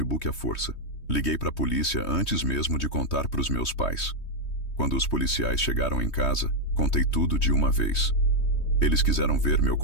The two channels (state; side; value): late; right; 3.2 ms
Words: à força. Liguei para a polícia antes mesmo de contar para os meus pais. Quando os policiais chegaram em casa, contei tudo de uma vez. Eles quiseram ver meu